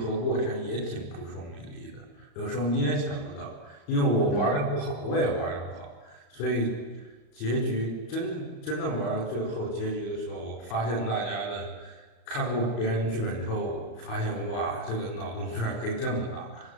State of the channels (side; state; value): right; late; 35 ms